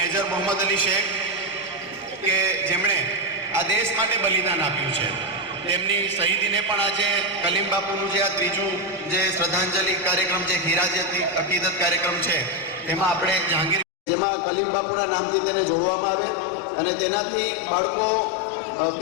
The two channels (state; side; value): drops out; right; at 13.9 s